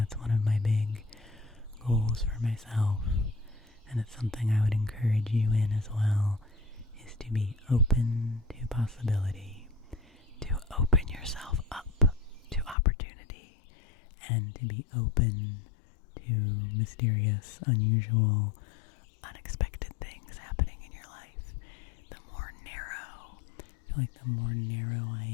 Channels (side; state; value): right; drops out; at 12.8 s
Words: one of my big goals for myself. And it's something I would encourage you in as well, is to be open to possibility, to open yourself up to opportunity, and to be open to mysterious, unusual, unexpected things happening in your life. The more narrow, I feel like the more narrow I